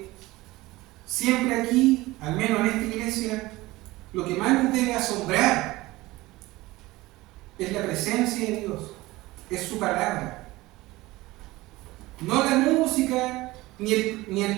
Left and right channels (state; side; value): quieter; left; 19.5 dB